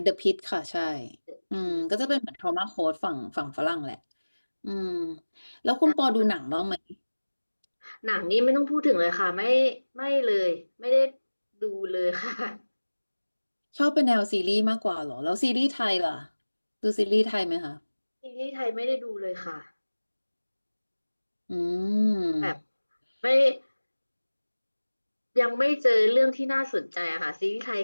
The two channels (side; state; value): both; inverted; correlation -1.00